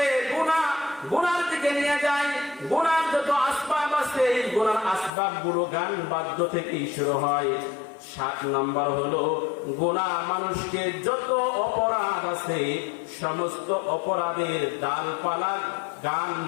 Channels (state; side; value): drops out; right; at 5.1 s